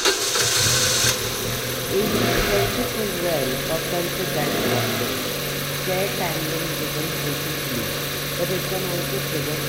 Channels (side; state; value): both; identical; correlation 1.00